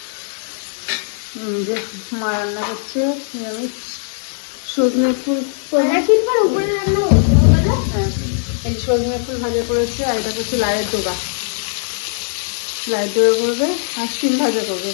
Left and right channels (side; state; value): right; silent; digital silence